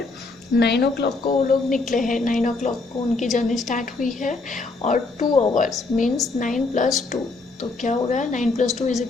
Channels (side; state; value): right; quieter; 3.6 dB